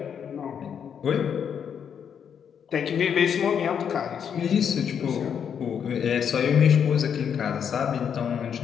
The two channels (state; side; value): quieter; right; 7.8 dB